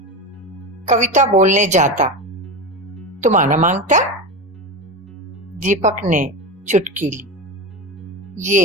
कविता बोलने जाता। तुम आना मांगता? दीपक ने चुटकी ली।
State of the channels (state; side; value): normal; both; correlation 0.21